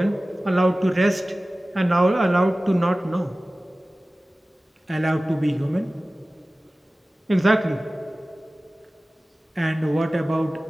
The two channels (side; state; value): both; normal; correlation 0.97